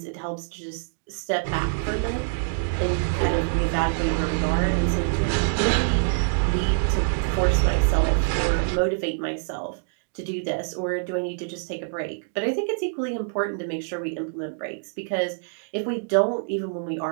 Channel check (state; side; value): silent; left; digital silence